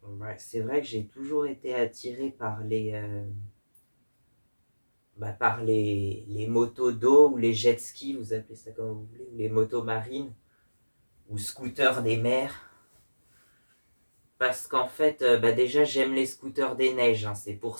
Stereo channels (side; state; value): both; inverted; correlation -1.00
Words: Ouais, c'est vrai que j'ai toujours été attiré par les motos d'eau ou les jet skis, vous appelez ça comme vous voulez, ou les motos marines ou scooters des mers. Parce qu'en fait, déjà j'aime les scooters des neiges, hein. C'est pour